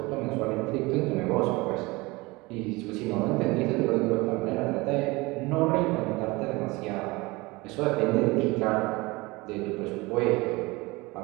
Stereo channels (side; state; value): left; quieter; 23.1 dB